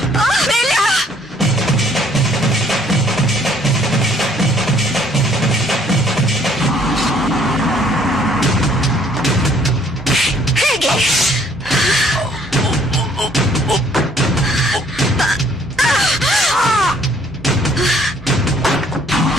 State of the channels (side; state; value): both; normal; correlation 0.61